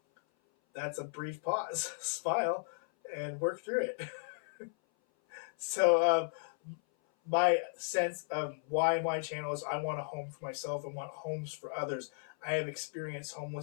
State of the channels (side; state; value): right; silent; 54 dB below the other